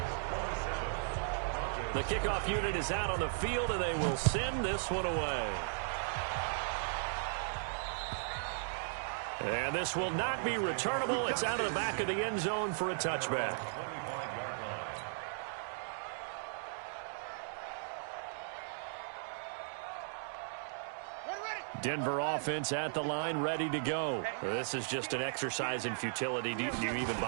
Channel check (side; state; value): left; silent; digital silence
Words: The kickoff unit is out on the field, and they will send this one away. And this will not be returnable. It's out of the back of the end zone for a touchback. Denver offense at the line, ready to go. This is just an exercise in futility. Do you even